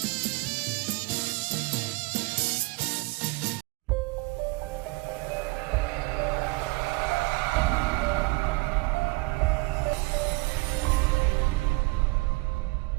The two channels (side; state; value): left; quieter; 25.2 dB